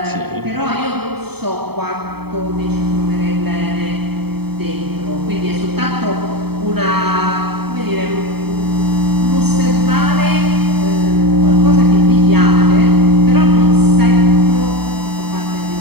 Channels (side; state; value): left; late; 0.97 ms